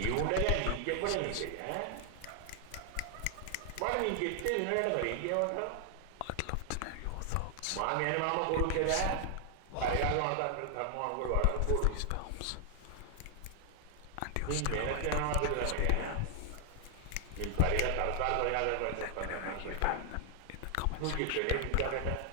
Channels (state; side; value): different; both; correlation 0.00